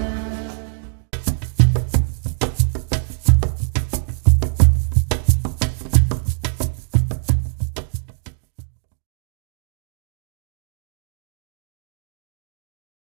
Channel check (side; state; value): left; silent; digital silence